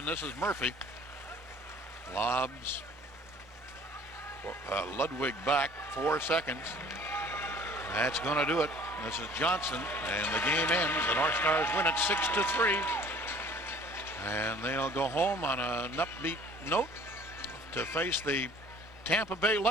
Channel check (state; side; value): normal; both; correlation 0.51